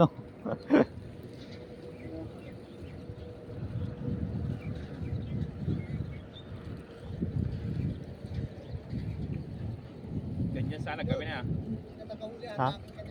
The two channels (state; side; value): identical; both; correlation 1.00